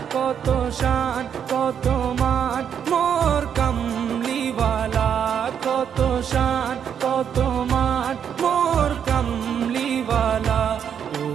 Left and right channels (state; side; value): quieter; left; 8.2 dB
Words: কত শান কত মান মোর কামলিওয়ালা, কত শান কত মান মোর কামলিওয়ালা। ও